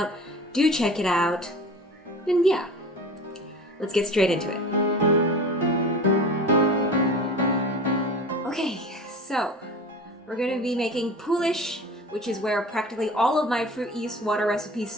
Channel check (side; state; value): both; normal; correlation 0.36